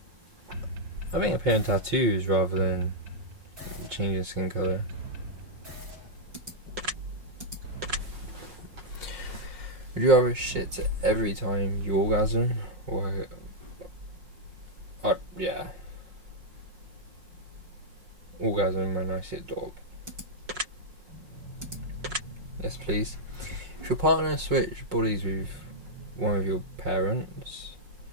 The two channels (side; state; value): left; late; 5.5 ms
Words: appearing tattoos rather than changing skin colour. Would you rather shit every time you orgasm, or yeah, orgasm when I see a dog? Yes, please. If your partner switched bodies with one of your parents,